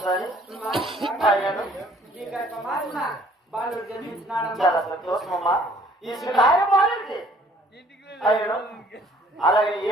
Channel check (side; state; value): both; normal; correlation 0.58